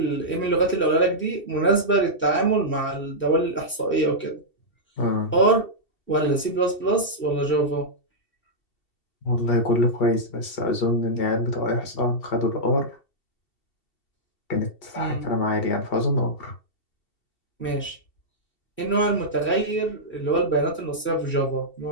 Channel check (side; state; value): right; late; 2.7 ms